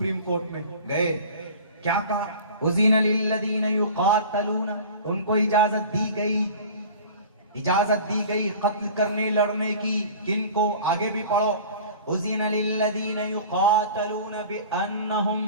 कोर्ट में गए, क्या कहा, उज़ीना लिल्लज़ीना युक़ातलूना, उनको इजाजत दी गई कत्ल करने लड़ने की। किनको? आगे भी पढ़ो, उज़ीना लिल्लज़ीना युक़ातलूना बिअन्नहुम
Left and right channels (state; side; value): inverted; both; correlation -0.40